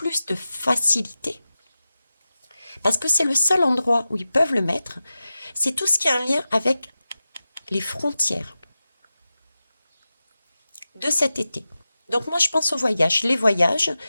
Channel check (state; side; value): inverted; both; correlation -0.93